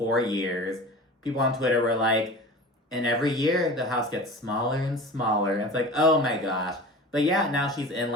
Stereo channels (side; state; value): both; normal; correlation 0.36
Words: years. People on Twitter were like, and every year the house gets smaller and smaller. And it's like, oh my gosh. But yeah, now she's in,